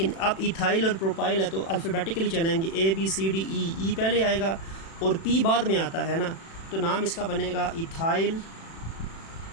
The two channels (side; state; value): right; late; 36 ms